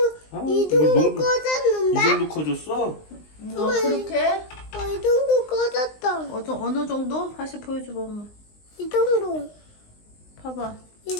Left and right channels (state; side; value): late; right; 19 ms